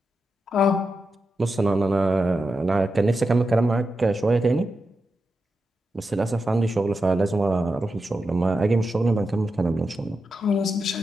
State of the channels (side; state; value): both; normal; correlation 0.88